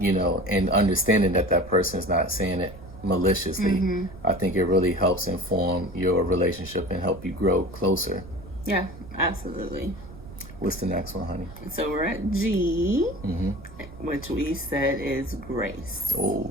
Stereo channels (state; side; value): noise; right; rumble, 16 dB below the sound